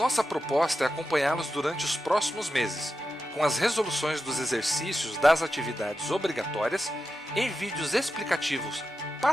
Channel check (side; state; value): both; normal; correlation 0.90